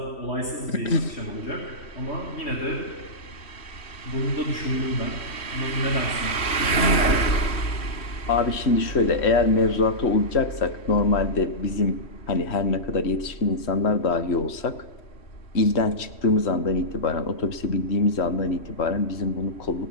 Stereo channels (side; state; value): right; late; 3.1 ms